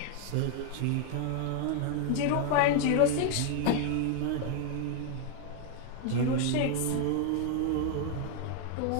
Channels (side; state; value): both; different; correlation 0.00